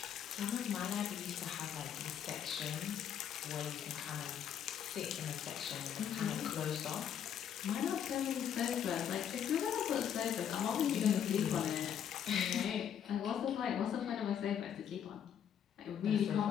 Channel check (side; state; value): right; quieter; 9.0 dB